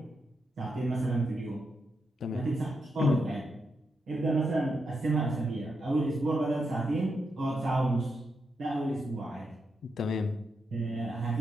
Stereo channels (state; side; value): normal; both; correlation 0.84